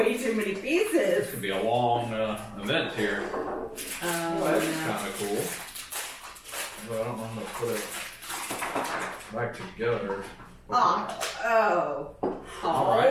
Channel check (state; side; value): identical; both; correlation 1.00